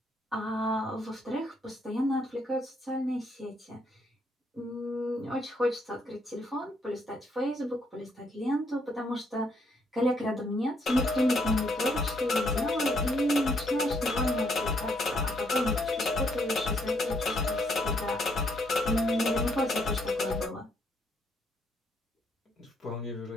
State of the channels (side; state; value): both; normal; correlation 0.72